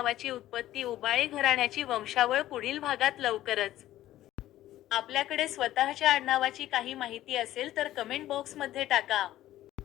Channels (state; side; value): quieter; right; 14.1 dB